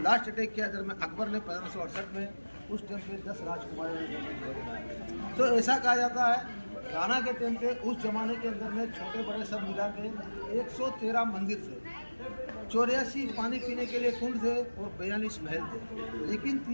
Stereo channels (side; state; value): both; inverted; correlation -1.00